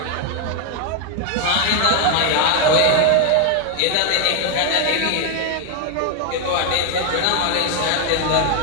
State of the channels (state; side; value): different; both; correlation 0.01